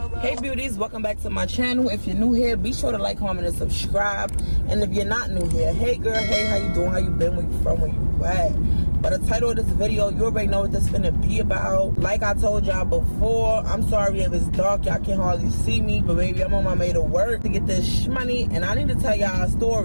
ride. Hey beauties, welcome back to my channel. If you're new here, be sure to like, comment, and subscribe. And if you're not new here, hey girl, hey, how you doing? How you been? Where you from? Where you at? But the title of this video, you already know what this finna be about. Like I told y'all before, I'm sorry if it's dark, y'all can hardly see me, but baby, I'm on my way to work to get this money, and I need to tell y'all a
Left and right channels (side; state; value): both; inverted; correlation -1.00